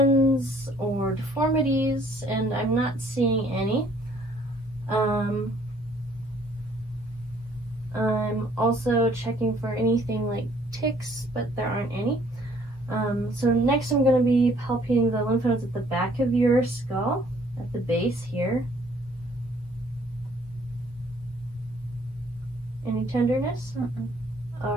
or deformities, and I'm not seeing any. I'm also checking for anything like ticks, but there aren't any. So next I'm going to be palpating the lymph nodes at the back of your skull, at the base here. Any tenderness? All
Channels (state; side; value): normal; both; correlation 0.61